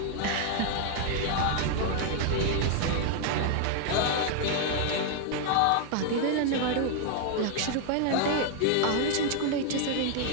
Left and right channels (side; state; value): both; different; correlation 0.00